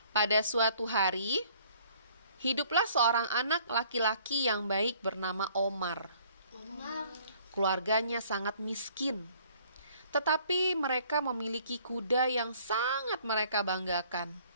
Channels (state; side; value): inverted; both; correlation -0.58